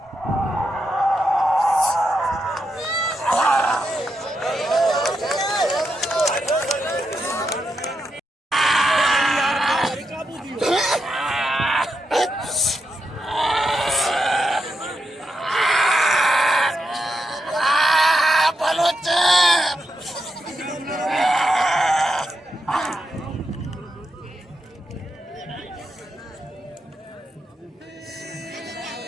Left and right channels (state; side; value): normal; both; correlation 0.84